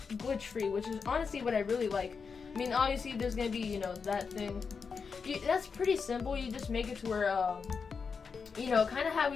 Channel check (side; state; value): right; quieter; 5.5 dB